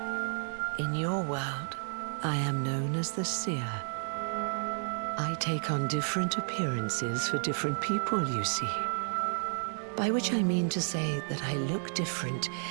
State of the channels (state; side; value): silent; left; 57 dB below the other